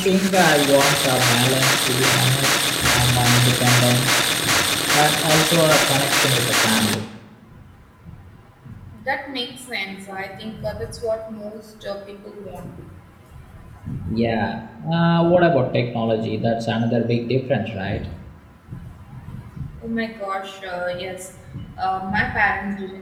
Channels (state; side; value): identical; both; correlation 1.00